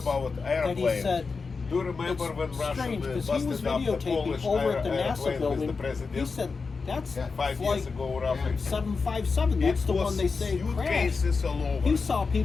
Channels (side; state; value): right; quieter; 4.6 dB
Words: that he airplanes, said do you remember it's when Russia strange because he was busted up the videotaping Polish over at the airplane NASA with building. the president? He said that's Yeah, 5 flight years ago, roughly. 757. That's It the was one they say crashed. suitcases all over. He saw